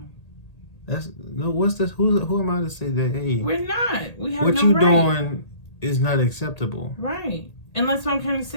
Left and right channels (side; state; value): right; late; 1.8 ms